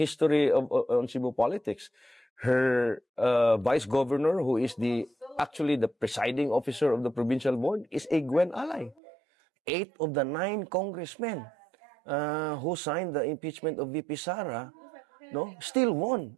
on Cebu politics. Her vice governor, who is actually the presiding officer of the provincial board, is a Gwen ally. 8 of the 9 congressmen who signed the impeachment of VP Sara, still won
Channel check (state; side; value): drops out; left; at 9.0 s